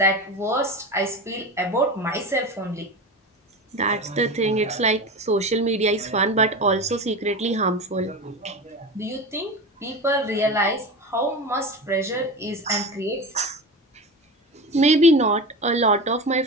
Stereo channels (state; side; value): normal; both; correlation 0.26